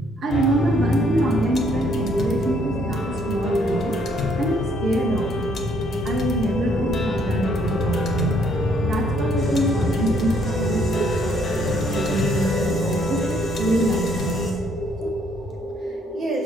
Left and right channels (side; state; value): both; normal; correlation 0.67